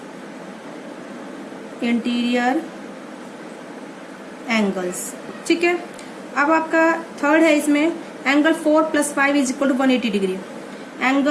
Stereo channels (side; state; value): both; identical; correlation 1.00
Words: interior angles. ठीक है, अब आपका थर्ड है इसमें angle 4 + 5 is equal to 180 degree.